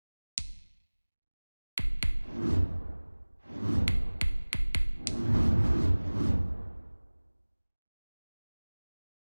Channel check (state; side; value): inverted; both; correlation -1.00